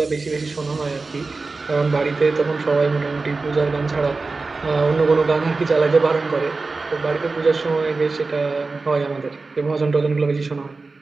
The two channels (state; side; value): quieter; left; 3.8 dB